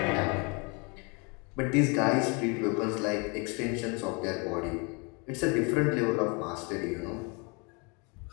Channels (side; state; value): right; quieter; 31.8 dB